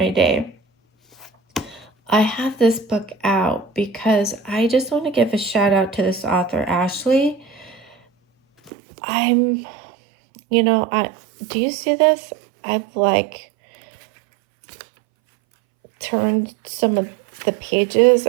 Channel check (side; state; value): left; drops out; at 8.7 s